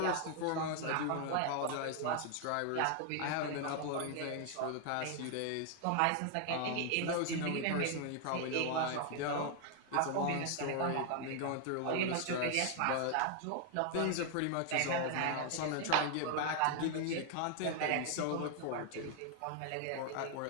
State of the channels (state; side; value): different; both; correlation 0.00